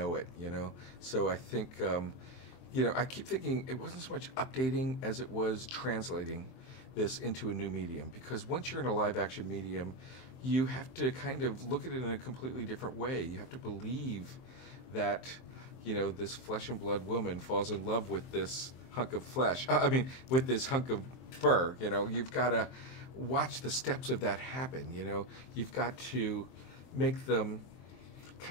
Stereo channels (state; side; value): late; right; 23 ms